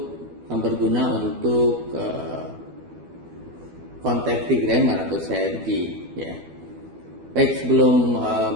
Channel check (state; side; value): late; left; 12 ms